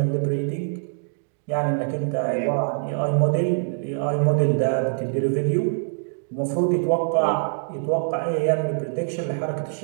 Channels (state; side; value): silent; left; digital silence